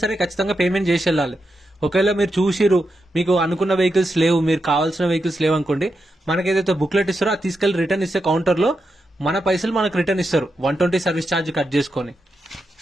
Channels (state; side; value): normal; both; correlation 0.86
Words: సరే ఖచ్చితంగా పేమెంట్ చేసి వెళ్ళాలి. ఒకవేళ మీరు చూసిరు మీకు అనుకున్న వెహికల్స్ లేవు, మీరు కావాల్సిన వెహికల్స్ లేవు అనుకోండి, మనకి ఏదైతే బుక్లెట్ ఇస్తారో అది తీసుకెళ్లి రిటర్న్ ఇస్తే కౌంటర్లో మన పైసలు మనకు రిటర్న్ ఇస్తారు 120 సర్వీస్ ఛార్జ్ కట్ చేసుకొని.